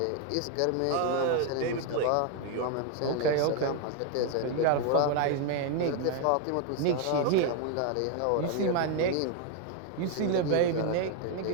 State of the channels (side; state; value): both; different; correlation 0.00